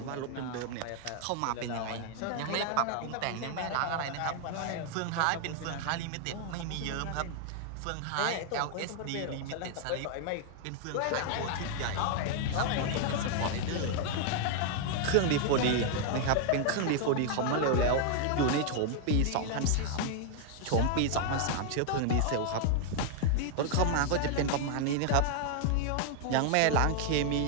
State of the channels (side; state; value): both; different; correlation 0.00